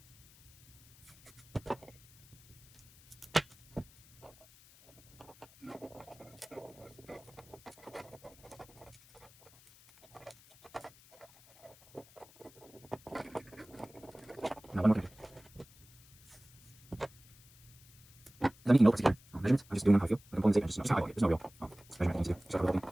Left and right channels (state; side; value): noise; left; hiss, 24 dB below the sound